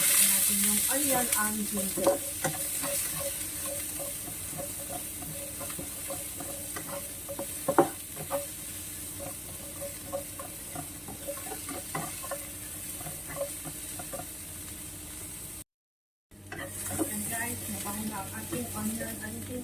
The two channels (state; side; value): identical; both; correlation 1.00